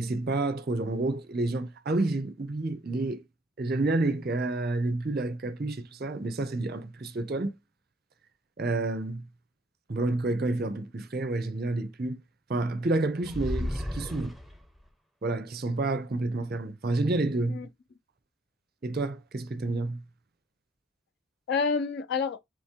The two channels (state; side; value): normal; both; correlation 0.62